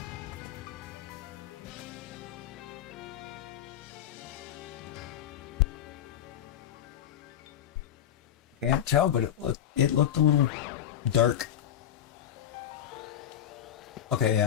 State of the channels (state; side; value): quieter; right; 10.3 dB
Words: Can't tell, but it looked a little dark. Okay,